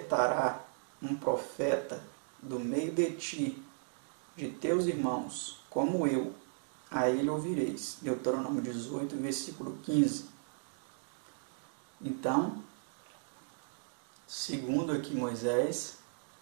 um profeta do meio de ti, de teus irmãos, como eu, a ele ouvireis. Deuteronômio 18, versículo 15. Então, segundo aqui Moisés,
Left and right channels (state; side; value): silent; left; digital silence